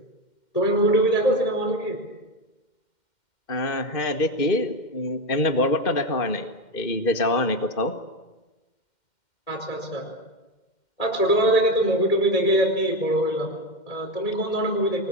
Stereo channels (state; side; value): late; right; 2.1 ms